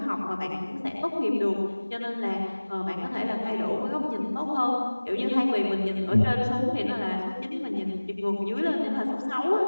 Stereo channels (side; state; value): both; inverted; correlation -1.00